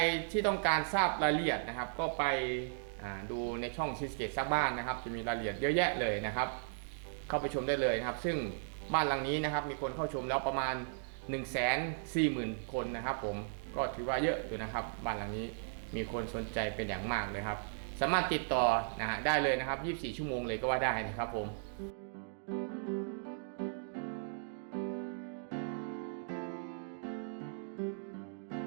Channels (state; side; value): silent; left; digital silence